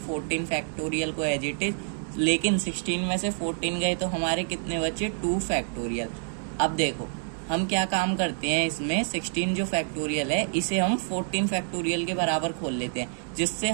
फैक्टोरियल को एज इट इज, लेकिन 16 में से 14 गए तो हमारे कितने बचे, 2 फैक्टोरियल। अब देखो हम क्या काम करते हैं इसमें, 16 जो फैक्टोरियल है इसे हम 14 फैक्टोरियल के बराबर खोल लेते हैं, जिससे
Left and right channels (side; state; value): left; silent; digital silence